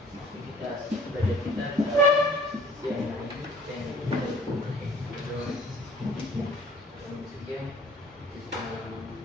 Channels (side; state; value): both; normal; correlation 0.52